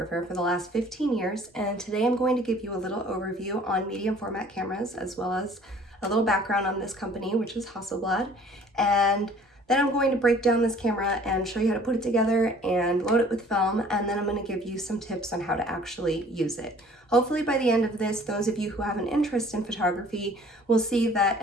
for the last 15 years, and today I'm going to give you a little overview on medium format cameras, as well as a little background on this company, which is Hasselblad, and then I'm going to break down this camera and show you how to put it together and load it with film, and then I'm going to give you some tips on how to actually use it. Hopefully by the end of this, those of you who have an interest in photography will see that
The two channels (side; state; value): both; normal; correlation 0.53